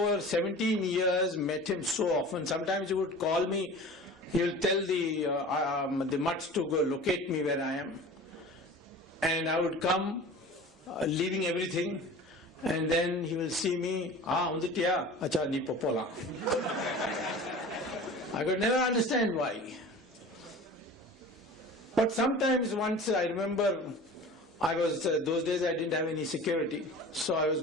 17 years met him so often. Sometimes he would call me. He will tell the mutts to go locate me where I am. And I would come, leaving everything, and then he will see me, unditiya, acha ni popola. I could never understand why. But sometimes once I remember, those days I didn't have any security, so I was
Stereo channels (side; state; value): both; normal; correlation 0.39